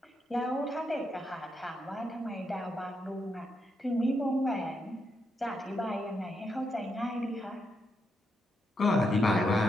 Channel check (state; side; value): normal; both; correlation 0.81